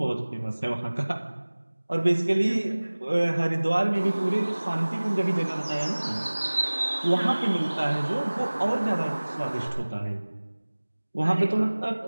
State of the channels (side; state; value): both; inverted; correlation -1.00